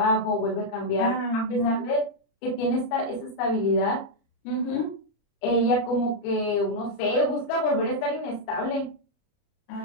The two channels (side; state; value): right; late; 30 ms